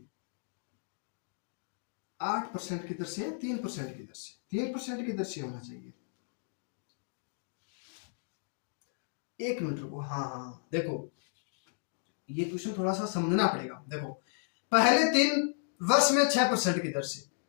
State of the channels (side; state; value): right; silent; digital silence